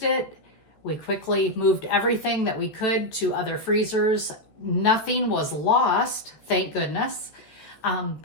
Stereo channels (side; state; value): right; late; 14 ms